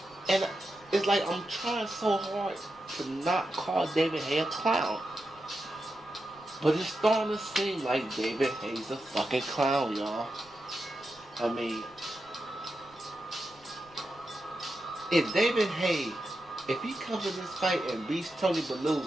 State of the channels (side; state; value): right; noise; rumble, 28 dB below the sound